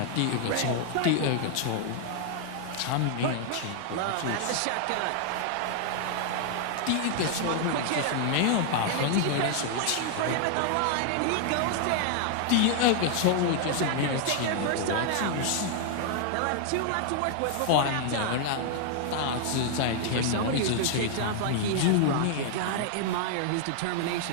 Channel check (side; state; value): both; different; correlation 0.00